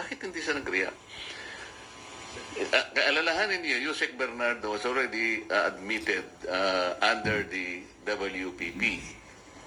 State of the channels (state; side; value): identical; both; correlation 1.00